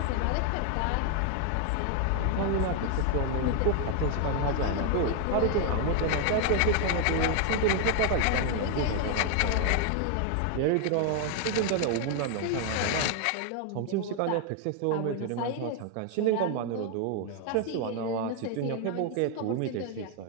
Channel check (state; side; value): different; both; correlation 0.00